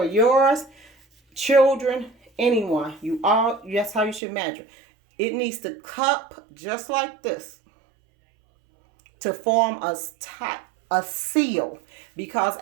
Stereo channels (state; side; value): drops out; left; at 4.2 s